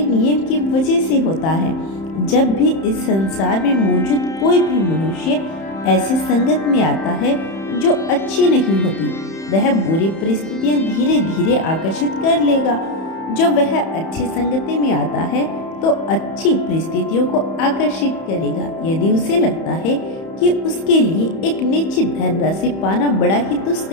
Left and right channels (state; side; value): late; right; 31 ms